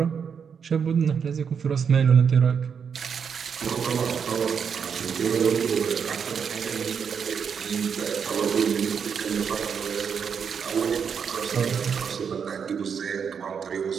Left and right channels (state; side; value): quieter; left; 6.8 dB